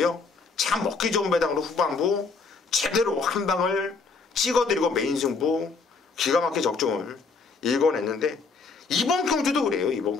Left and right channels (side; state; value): right; quieter; 4.5 dB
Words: 참 먹기 좋은 배당으로 후반부 제대로 한 방을 찍어드리고 메인 승부 기가 막히게 적중을 읽어냈는데 이번 경주도 그래요. 이번